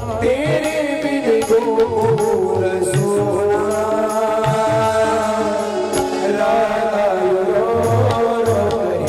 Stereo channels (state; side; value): identical; both; correlation 1.00